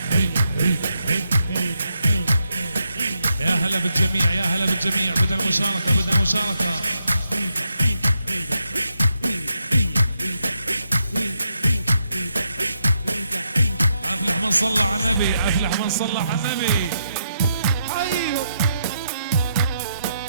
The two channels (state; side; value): inverted; both; correlation -0.80